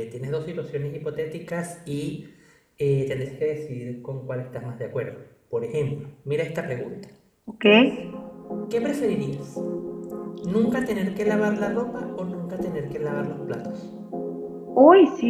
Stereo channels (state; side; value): identical; both; correlation 1.00